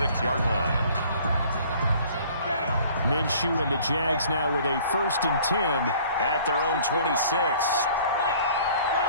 line. Minshew and the Jags now with a first and 10 at their own 26.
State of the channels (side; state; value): both; inverted; correlation -0.53